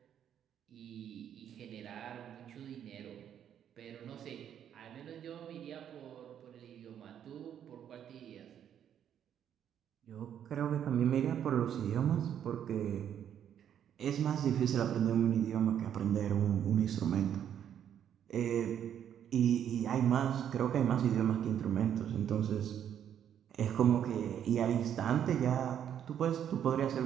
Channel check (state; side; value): quieter; left; 9.5 dB